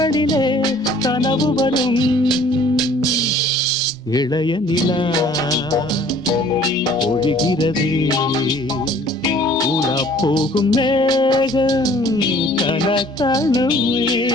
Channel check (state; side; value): normal; both; correlation 0.54